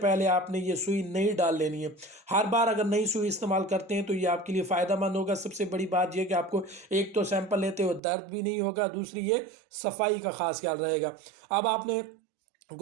आपने ये सुई नहीं डाल लेनी है। हर बार अगर नई सुई इस्तेमाल करते हैं तो ये आपके लिए फ़ायदेमंद होगा। सबसे बड़ी बात यह कि आपको एक तो सैंपल लेते हो दर्द भी नहीं होगा, दूसरी ये सफाई का ख़ास ख्याल रहेगा। अब आपने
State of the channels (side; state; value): left; drops out; at 8.0 s